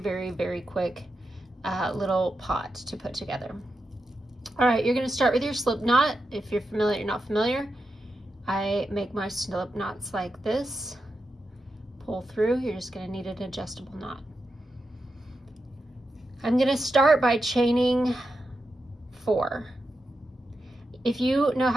very quick little pot to put together. All right, you're going to start with your slip knot. If you're familiar, you're not familiar, I make my slip knots like this. Pull through. You're just going to need an adjustable knot. I'm going to start by chaining 4. If you know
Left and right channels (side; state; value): both; normal; correlation 0.88